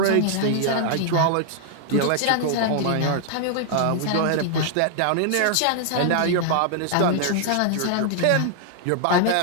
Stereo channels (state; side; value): different; both; correlation 0.00